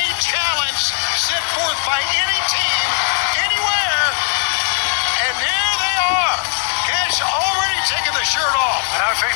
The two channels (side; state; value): right; silent; 62 dB below the other